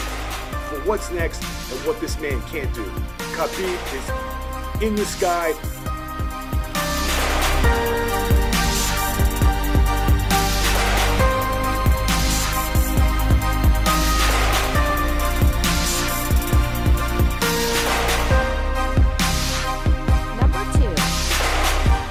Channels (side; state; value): both; identical; correlation 1.00